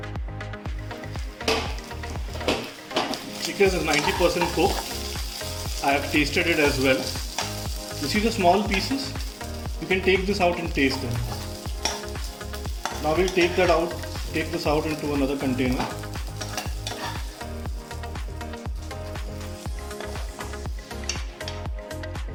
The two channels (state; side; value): identical; both; correlation 1.00